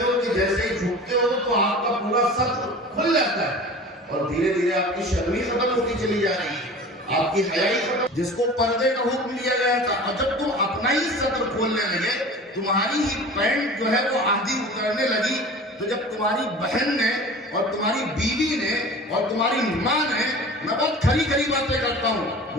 ہو کہ جیسے ہی جھکتے ہو تو آپ کا پورا سطر کھل جاتا ہے، اور دھیرے دھیرے آپ کی شرمی ختم ہوتی چلی جا رہی ہے، آپ کی حیائی ختم، جس کو پردے کا حکم دیا گیا تھا، اور جب تم اپنا ہی سطر کھولنے لگے، تمہاری ہی پینٹ جو ہے وہ آدھی اترنے لگی، تو جب تمہاری بہن نے اور تمہاری بیوی نے اور تمہاری ماں نے، میں بہت کھری کھری باتیں کرتا ہوں،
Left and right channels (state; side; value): normal; both; correlation 0.39